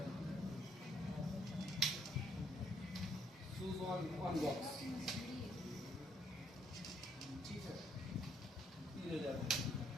शूज 1 बॉक्स, ठीक है, 3000।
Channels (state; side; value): normal; both; correlation 0.69